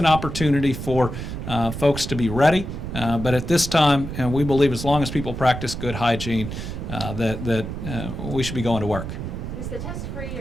opportunity for folks to be ready. But at this time, and we believe as long as people practice good hygiene, that we should be going to work. Is the test free,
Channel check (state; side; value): noise; right; rumble, 6 dB below the sound